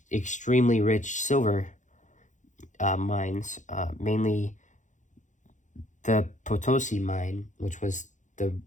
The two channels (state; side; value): late; right; 0.36 ms